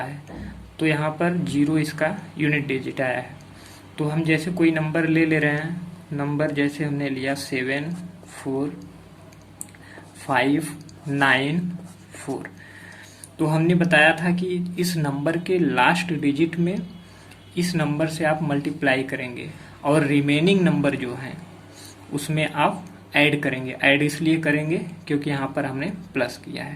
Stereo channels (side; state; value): both; identical; correlation 1.00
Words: तो यहाँ पर 0 इसका यूनिट डिजिट आया है। तो हम जैसे कोई नंबर ले रहे हैं, नंबर जैसे हमने लिया 7 4 5 9 4। तो हमने बताया था कि इस नंबर के लास्ट डिजिट में इस नंबर से आप मल्टीप्लाई करेंगे और रिमेनिंग नंबर जो हैं उसमें आप ऐड करेंगे। ऐड इसलिए करेंगे क्योंकि यहाँ पर हमने प्लस किया